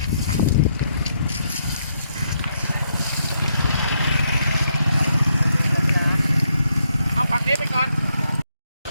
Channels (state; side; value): inverted; both; correlation -0.77